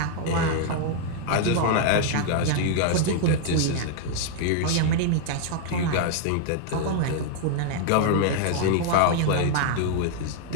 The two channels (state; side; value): different; both; correlation 0.00